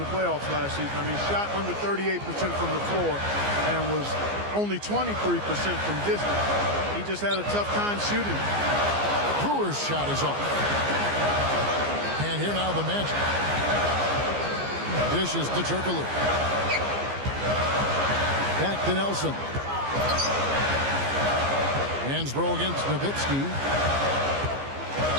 playoffs last season. I mean, shot under 38% from the floor and was only 23% from distance. He just had a tough time shooting. Brewer's shot is off. And here now the Magic. Dishes to Turkoglu. Back to Nelson. Hansbrough against Nowitzki.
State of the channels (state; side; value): late; left; 15 ms